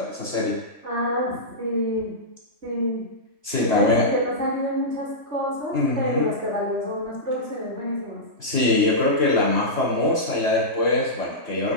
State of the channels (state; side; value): late; left; 2.8 ms